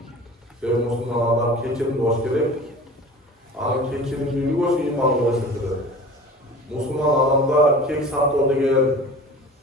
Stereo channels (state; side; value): normal; both; correlation 0.41